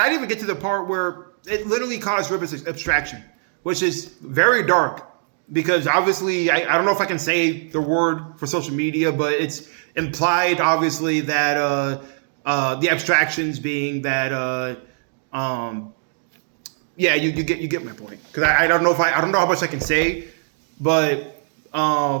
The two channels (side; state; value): left; silent; digital silence